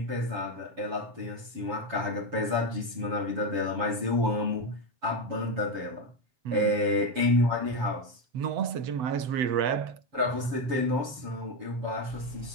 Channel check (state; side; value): late; left; 7.1 ms